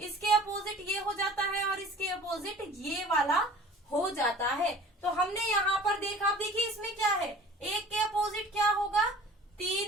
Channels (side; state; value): both; normal; correlation 0.45